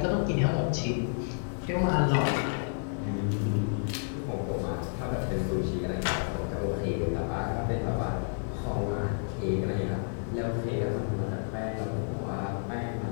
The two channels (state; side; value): silent; right; 58 dB below the other